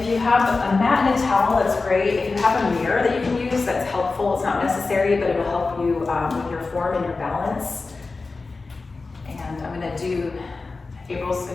you have a mat and a towel, that's great. If you have a mirror that you can use, that's helpful. It's not necessary, but it'll help you with your form and your balance. And I'm gonna do, April's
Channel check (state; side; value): quieter; right; 3.9 dB